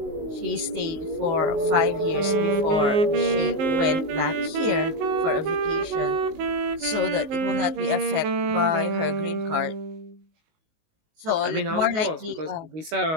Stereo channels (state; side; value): late; left; 19 ms